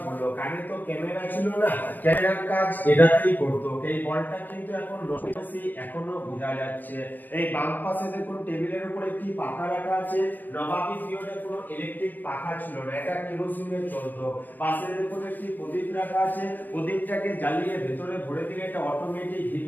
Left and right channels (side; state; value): right; late; 0.090 ms